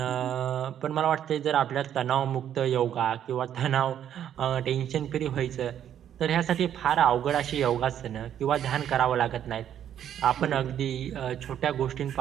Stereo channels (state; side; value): quieter; left; 10.0 dB